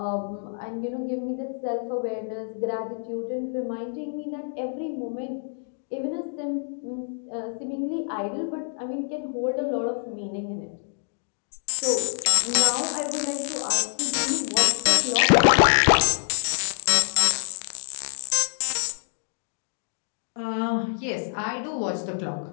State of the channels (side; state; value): right; silent; 61 dB below the other